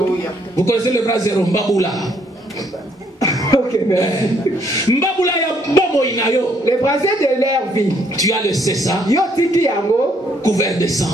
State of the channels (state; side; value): normal; both; correlation 0.68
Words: Vous connaissez le brasero, Mbaboula? Ok, merci. Mbaboula ya bomo inayo. Les brasiers de leur vie. Tu as laissé ça couvert de